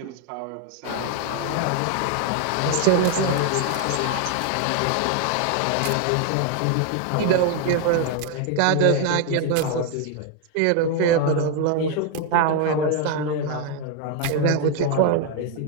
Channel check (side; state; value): both; different; correlation 0.01